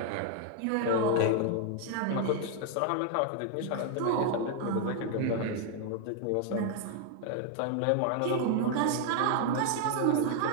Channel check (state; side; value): different; both; correlation 0.00